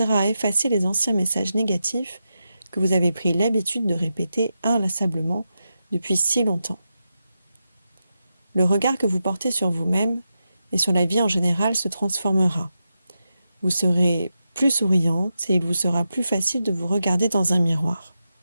à effacer les anciens messages négatifs que vous avez pris l'habitude de répéter inlassablement depuis si longtemps. Le regard que vous portez sur vous-même et sur la vie en général se transformera. Vous serez plus souriante et il vous sera plus facile de vous regarder dans un miroir.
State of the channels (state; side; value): inverted; both; correlation -0.88